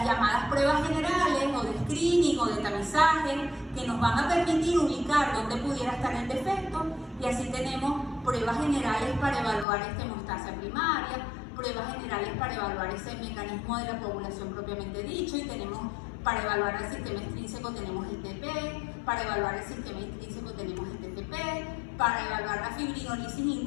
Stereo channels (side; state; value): right; drops out; at 9.7 s